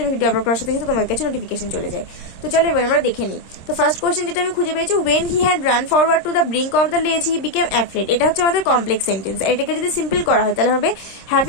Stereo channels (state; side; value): late; right; 26 ms